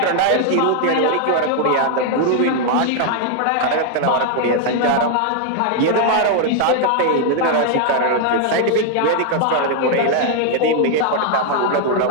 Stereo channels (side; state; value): both; different; correlation 0.00